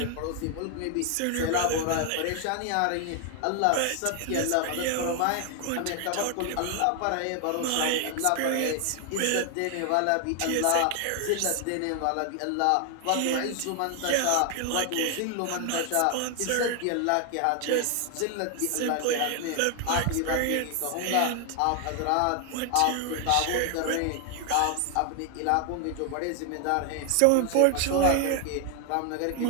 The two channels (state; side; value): different; both; correlation 0.00